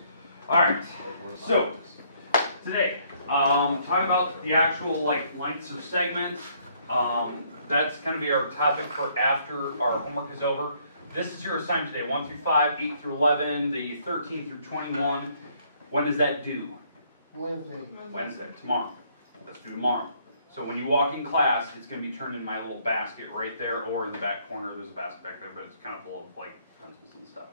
All right. So today, talking about the actual lengths of segments. That's going to be our topic for after our homework is over. This is your assignment today: 1 through 5, 8 through 11, the 13 through 21. When does that due? Wednesday. Tomorrow. Let's do tomorrow. So when you walk in class, it's going to be turned in my little basket right there, or in the back corner. There's a basket back there, but it's kind of full of pencils and stuff.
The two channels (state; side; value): inverted; both; correlation -0.66